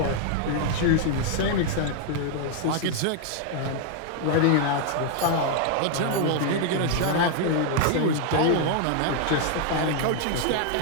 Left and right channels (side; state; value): both; different; correlation 0.00